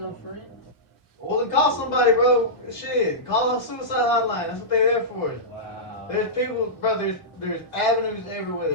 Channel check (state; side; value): late; right; 2.0 ms